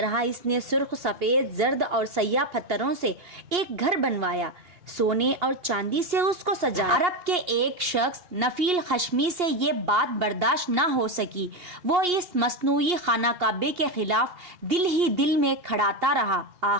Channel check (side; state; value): left; late; 2.8 ms